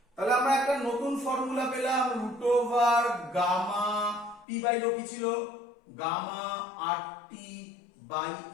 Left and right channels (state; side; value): drops out; right; at 4.5 s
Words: তাহলে আমরা একটা নতুন ফর্মুলা পেলাম root over gamma P by rho কি ছিল গামা 8টি বাই